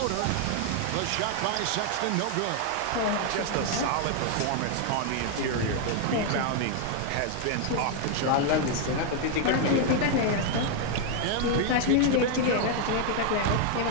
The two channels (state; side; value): different; both; correlation 0.00